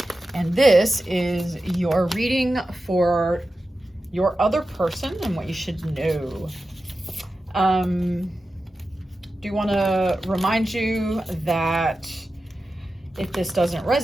and this is your reading for your other person and what you should know. Do want to remind you that if this doesn't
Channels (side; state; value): both; normal; correlation 0.93